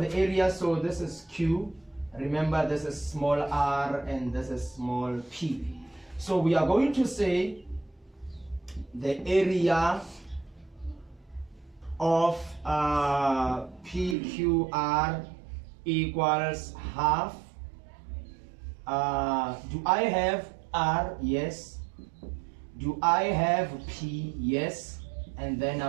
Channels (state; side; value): drops out; left; at 14.2 s